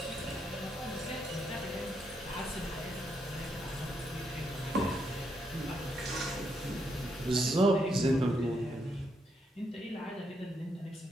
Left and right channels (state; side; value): normal; both; correlation 0.78